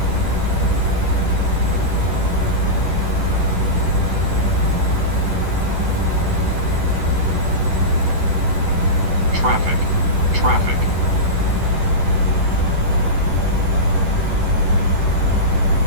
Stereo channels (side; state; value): left; late; 10 ms